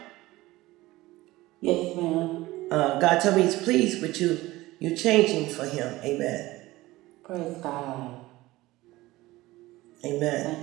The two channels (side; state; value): left; quieter; 18.5 dB